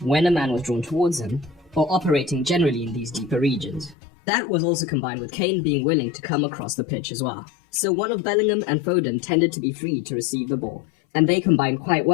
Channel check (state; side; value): drops out; right; at 4.0 s